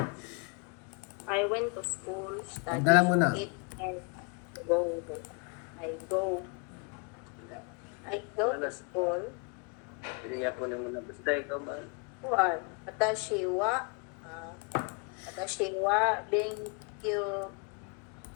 I went to school, studied, Magdala mo na. eat, and go. I go. I go to school. Hindi nga po naman na basta ikaw ba? Kuan, watashi wa benkyou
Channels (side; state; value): right; quieter; 35.5 dB